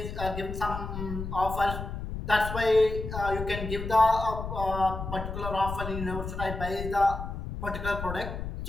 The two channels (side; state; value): left; noise; rumble, 6 dB below the sound